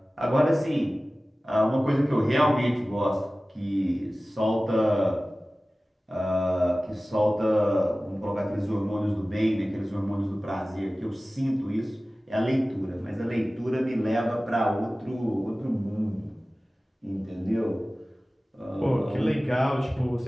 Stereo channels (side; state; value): both; normal; correlation 0.97